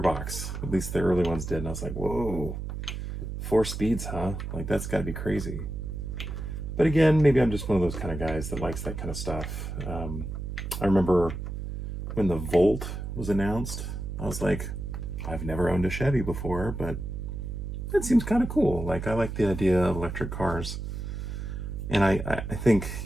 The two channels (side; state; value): right; noise; hum, 6 dB below the sound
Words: At least the early ones did, and I was like, whoa, 4 speeds, huh? That's got to be crazy. But again, maybe I'm just one of those kind of guys that likes that kind of stuff. I remember when the Volt was announced, I was like, I've never owned a Chevy before, but that seems kind of cool. I like the idea of electric cars. And I think,